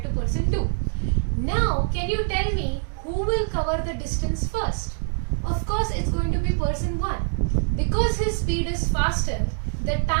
to person 2. Now can you tell me who will cover the distance first? Of course it's going to be person 1. Because his speed is faster, the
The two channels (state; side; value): silent; left; 57 dB below the other